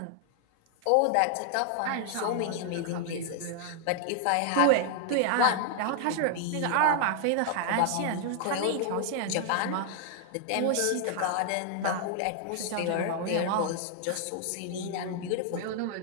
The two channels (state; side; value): different; both; correlation 0.00